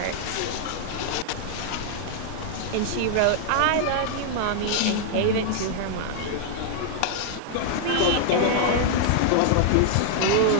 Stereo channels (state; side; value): different; both; correlation -0.01